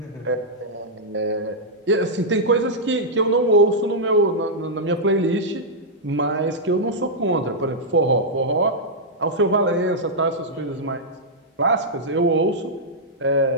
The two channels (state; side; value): normal; both; correlation -0.07